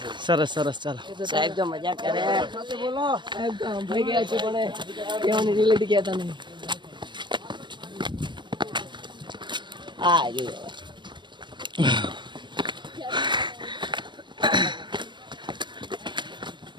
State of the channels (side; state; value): left; late; 0.22 ms